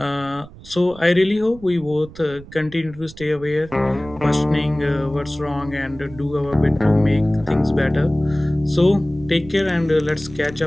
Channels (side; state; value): right; noise; rumble, 19 dB below the sound